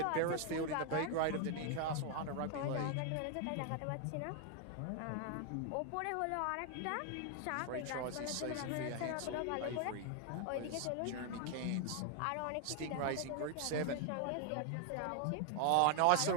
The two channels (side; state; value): both; different; correlation 0.00